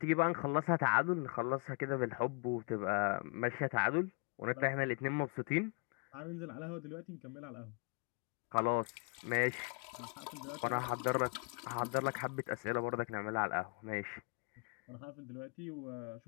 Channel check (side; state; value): right; quieter; 35.2 dB